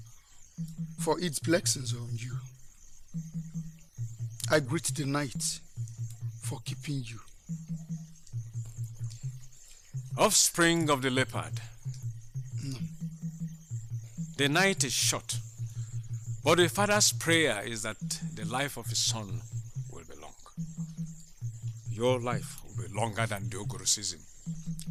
for its blessings on you. I greet the night for keeping you. Offspring of the leopard. No. The night is short, but the father's prayer is that the life of his son will be long. your life will be longer than the Ogoro season.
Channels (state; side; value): identical; both; correlation 1.00